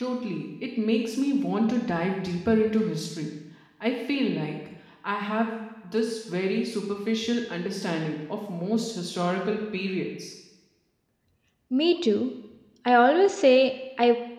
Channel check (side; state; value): both; identical; correlation 1.00